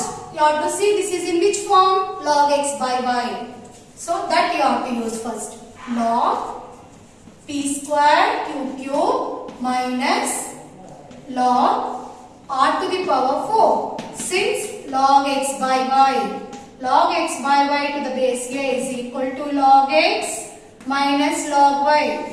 you have to see this is in which form? Log x by y. So that you have to use first. Log p square cube minus log r to the power 4. Since log x by y to the base a is equal to log x minus log y.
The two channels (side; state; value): both; identical; correlation 1.00